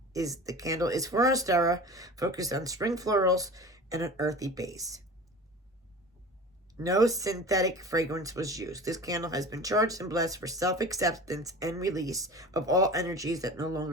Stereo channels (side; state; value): both; normal; correlation 0.37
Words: candle is for Ostara, focused on spring florals and an earthy base. No synthetic fragrance was used. This candle has been charged and blessed for self-acceptance and release of all energies that no